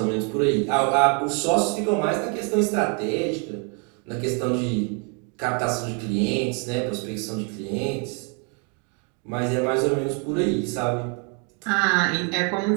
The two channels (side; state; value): left; quieter; 37.2 dB